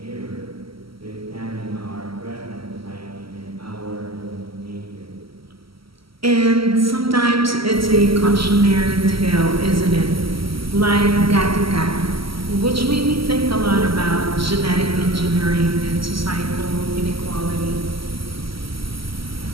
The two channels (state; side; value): late; left; 0.75 ms